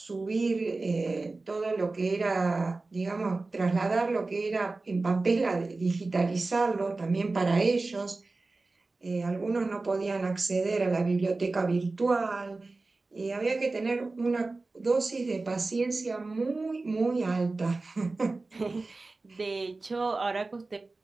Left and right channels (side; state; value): left; quieter; 3.5 dB